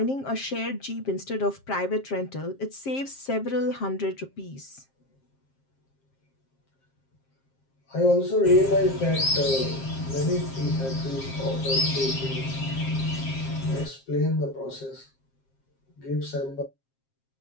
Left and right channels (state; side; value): late; right; 7.5 ms